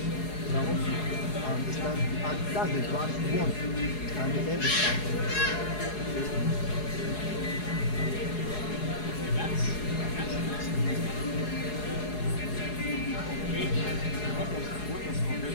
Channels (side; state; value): right; late; 4.8 ms